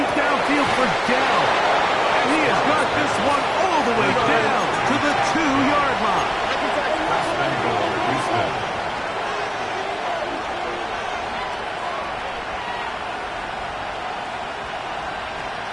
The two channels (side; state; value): both; identical; correlation 1.00